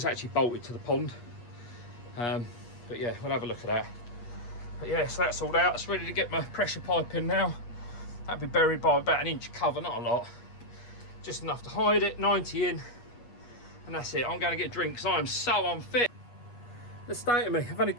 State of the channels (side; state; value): right; late; 8.4 ms